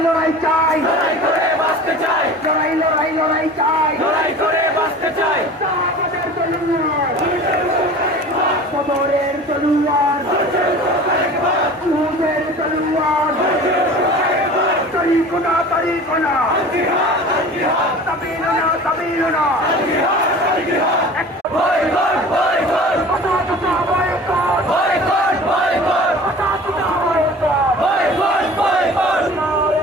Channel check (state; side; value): normal; both; correlation 0.40